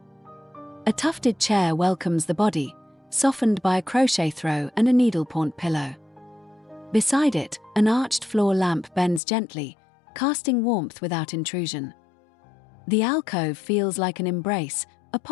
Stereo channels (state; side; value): drops out; right; at 9.2 s